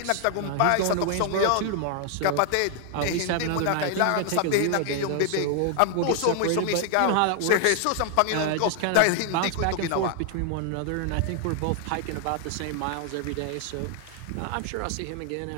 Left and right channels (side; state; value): both; different; correlation 0.00